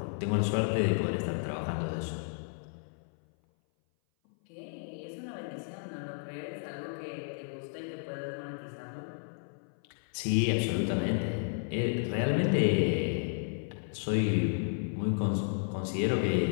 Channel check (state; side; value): silent; right; 56 dB below the other